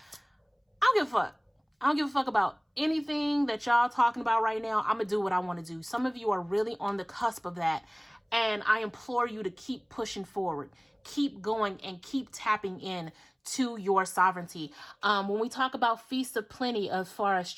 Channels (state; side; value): identical; both; correlation 1.00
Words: don't give a fuck. I don't give a fuck about anything that y'all talking about right now. I'm going to do what I want to do. Some of you are really on the cusp of that. And I implore you to keep pushing forward, keep going, and keep tapping in to your sovereignty. When we talk about feasts of plenty, as far as